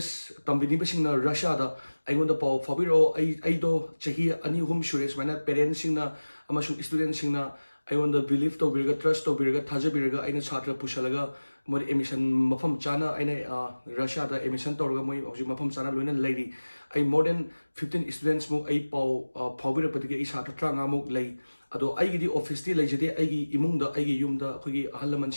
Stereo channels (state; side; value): inverted; both; correlation -1.00